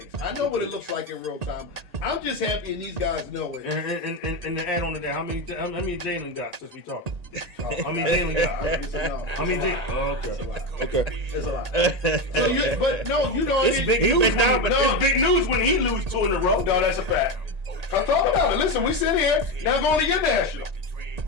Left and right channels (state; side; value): late; left; 1.8 ms